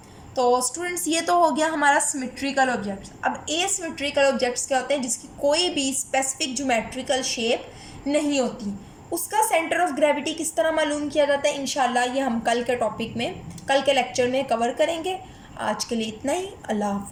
तो स्टूडेंट्स, ये तो हो गया हमारा सिमेट्रिकल ऑब्जेक्ट्स। अब एसिमेट्रिकल ऑब्जेक्ट्स क्या होते हैं, जिसकी कोई भी स्पेसिफिक ज्योमेट्रिकल शेप नहीं होती, उसका सेंटर ऑफ ग्रेविटी किस तरह मालूम किया जाता है, इंशाल्लाह ये हम कल के टॉपिक में, कल के लेक्चर में कवर करेंगे। आज के लिए इतना ही। अल्लाह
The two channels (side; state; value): both; identical; correlation 1.00